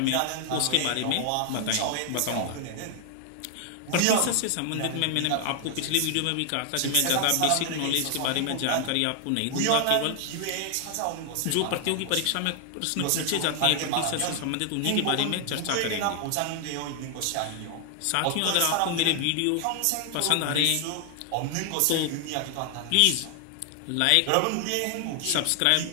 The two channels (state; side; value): different; both; correlation 0.00